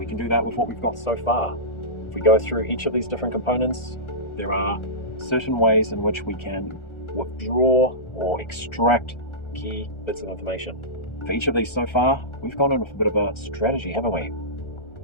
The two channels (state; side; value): late; right; 1.4 ms